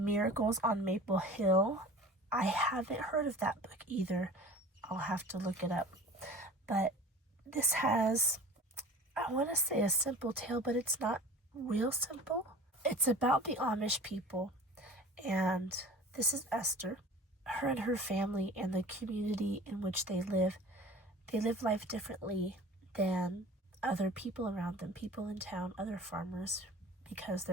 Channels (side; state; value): both; normal; correlation 0.41